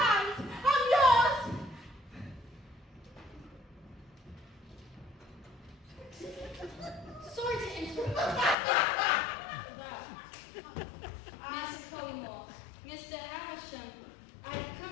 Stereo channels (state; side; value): drops out; right; at 8.6 s